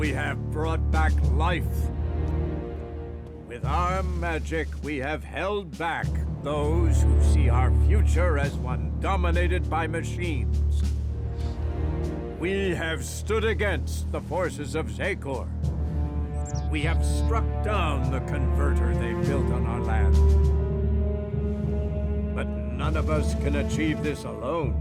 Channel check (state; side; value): identical; both; correlation 1.00